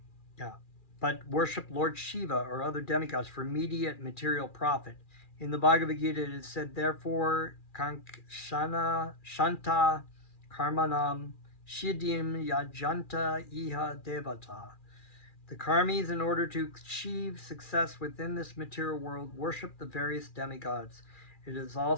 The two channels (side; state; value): right; late; 2.4 ms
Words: But worship Lord Siva or other demigods for immediate material profit. In the Bhagavad Gita, it is said, therefore, Kankshana Shanta Karmanam Shidim Yajanta Iha Devata. The karmis, in order to achieve success within this material world, worship the various demigods. It is